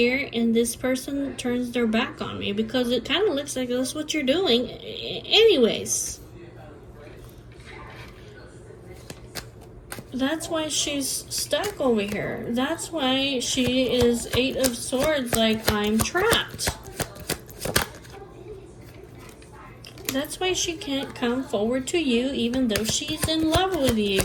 and this person turns their back on me? Because it kind of looks like that's what you're doing anyways. That's why she's stuck over here. That's why she is 8 of Swords, like, I'm trapped. That's why she can't come forward to you, even though she's in love with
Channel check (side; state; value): both; identical; correlation 1.00